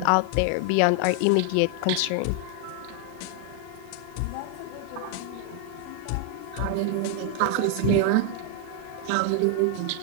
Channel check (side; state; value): both; different; correlation 0.00